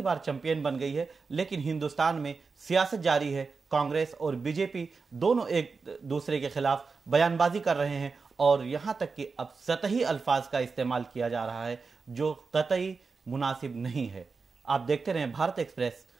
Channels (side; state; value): left; quieter; 4.6 dB